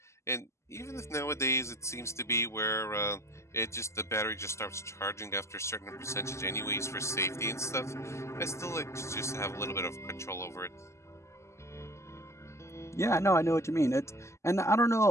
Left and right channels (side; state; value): right; late; 0.13 ms